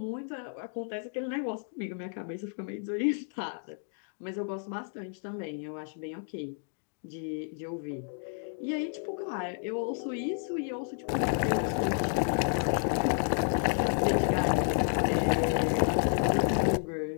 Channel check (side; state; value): right; silent; 57 dB below the other